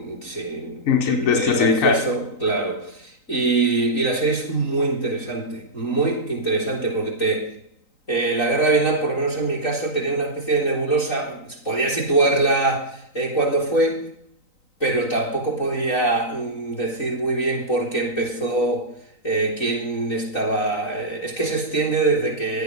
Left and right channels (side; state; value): right; late; 3.9 ms